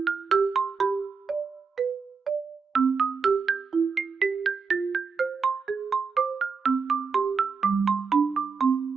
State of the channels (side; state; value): left; quieter; 5.3 dB